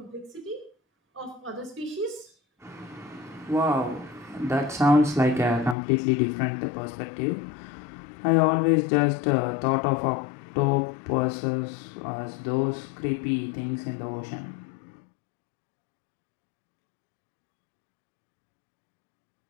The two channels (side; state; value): right; drops out; at 5.8 s